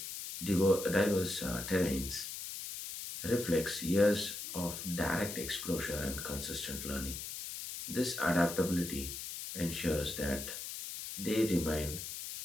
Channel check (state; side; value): noise; left; hiss, 7 dB below the sound